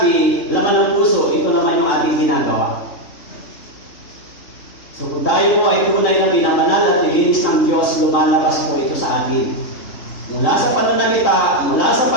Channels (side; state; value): right; late; 3.7 ms